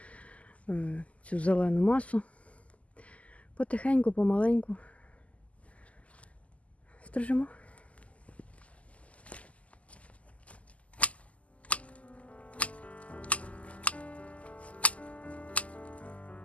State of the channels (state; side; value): late; right; 0.067 ms